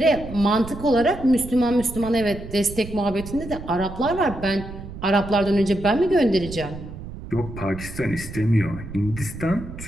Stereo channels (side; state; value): right; noise; rumble, 12 dB below the sound